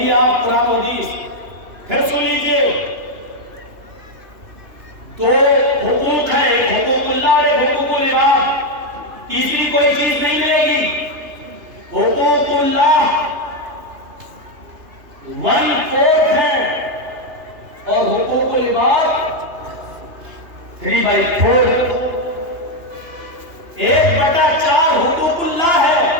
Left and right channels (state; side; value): late; left; 3.0 ms